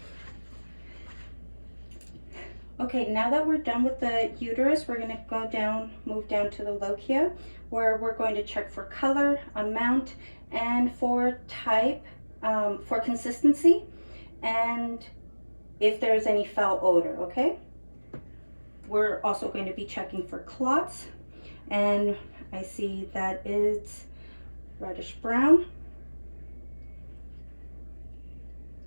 Okay, now that we're done with the uterus, we're gonna go down, move down to the lochia, where we're going to check for color, amount, and for type, for consistency, and if there's any foul odor, okay? We're also going to be checking for clots, and I see that it's reddish brown.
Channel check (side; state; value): both; inverted; correlation -1.00